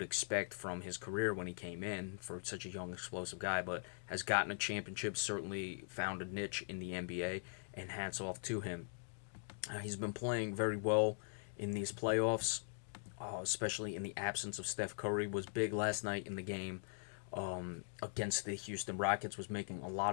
expect from his career when he came in for such a young, explosive guy, but has gotten a championship, certainly found a niche in the NBA, and hats off to him. He's been playing very well in these playoffs, especially in the absence of Steph Curry. Was big last night in the game against the Houston Rockets, was making a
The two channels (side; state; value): right; silent; digital silence